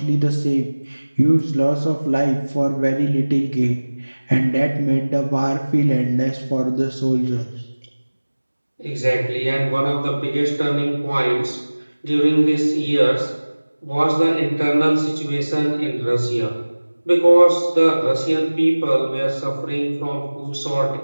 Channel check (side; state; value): both; inverted; correlation -1.00